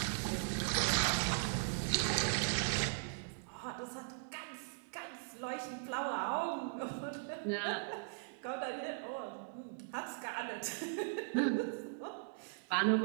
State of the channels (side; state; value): left; silent; digital silence